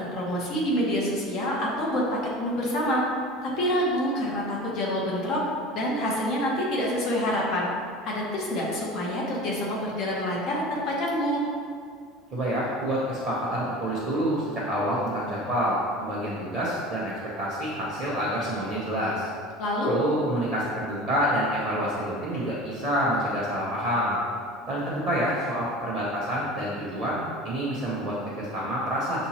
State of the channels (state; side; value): normal; both; correlation 0.37